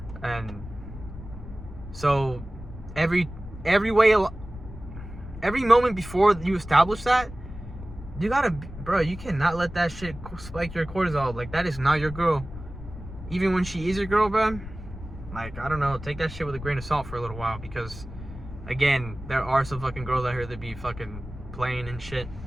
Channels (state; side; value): noise; left; rumble, 13 dB below the sound